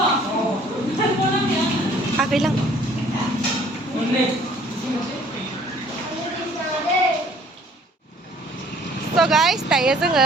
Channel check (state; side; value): normal; both; correlation 0.57